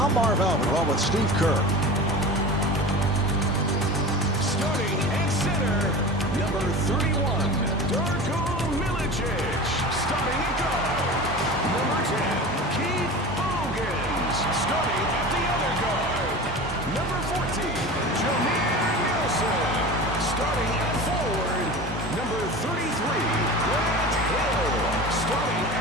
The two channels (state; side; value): normal; both; correlation 0.33